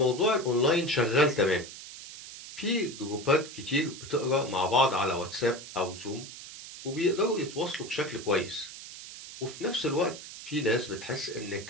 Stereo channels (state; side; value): noise; right; hiss, 13 dB below the sound